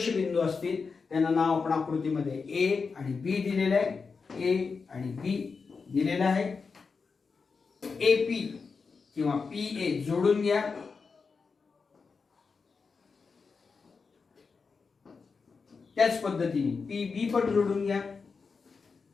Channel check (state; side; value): quieter; right; 5.0 dB